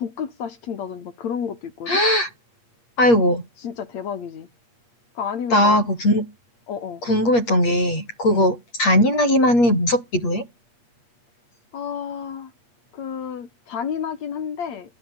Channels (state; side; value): late; right; 8.5 ms